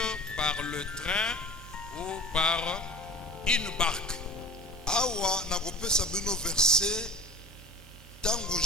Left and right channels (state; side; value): normal; both; correlation 0.36